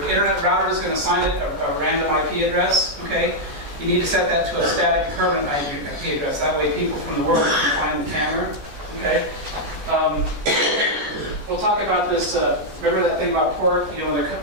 router is going to assign it a random IP address, okay? You need to set that to a static permanent IP address. That way people from the world can find the camera, okay? We'll talk about this, remember that thing about port? You know,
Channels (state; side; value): late; left; 14 ms